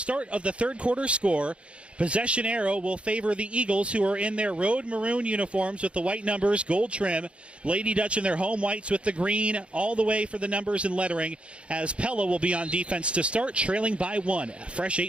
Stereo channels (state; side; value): late; left; 0.059 ms